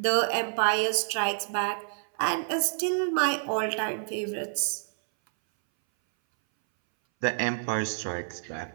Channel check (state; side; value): silent; left; 59 dB below the other